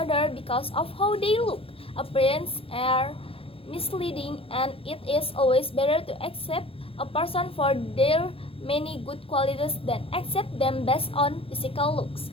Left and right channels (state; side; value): late; right; 0.27 ms